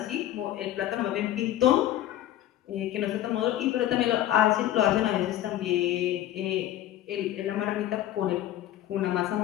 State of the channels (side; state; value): right; quieter; 12.9 dB